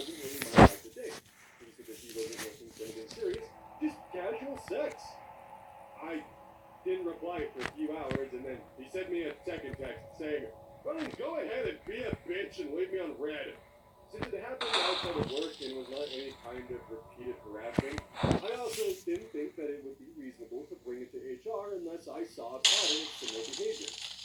really my type of date. He said that he wasn't looking for anything serious, just casual sex. I didn't reply for a few hours, and then he sent me a second text saying, "Well, go ahead and be a bitch and leave me on red." Since it happened outside of work and was not any kind of repeated harassment, I also didn't think that it would be reasonable to bring it to HR unless I saw a pattern of similar behavior.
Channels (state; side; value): identical; both; correlation 1.00